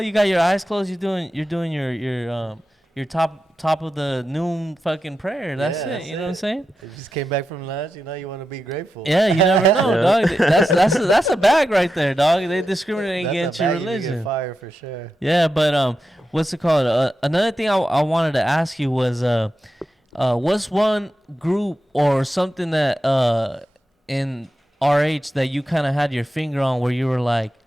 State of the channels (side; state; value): both; normal; correlation 0.89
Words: got your eyes closed. You're doing your top of the noon fucking prayer. That's Yeah, it. that's You know what I'm it. saying? You just came back from lunch. You know you want to be grateful. Yeah, you never know, Yeah. dog. That's a bag right there, dog. They discriminate That's against a your bag you can religion. get fired for sure. Yeah, but what's it called? Another thing I wanted to ask you was what's one group or something that in RH that you kind of had your finger on where you were like,